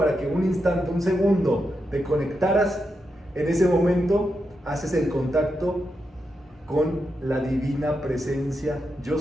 que un instante, un segundo, te conectaras, en ese momento haces el contacto con la divina presencia, yo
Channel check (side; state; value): both; normal; correlation 0.86